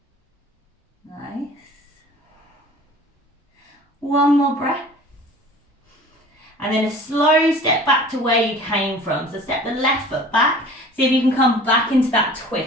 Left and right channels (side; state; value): both; normal; correlation 0.45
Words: Nice. One more breath. And then a slow step back to where you came from. So step the left foot back. See if you can come back into that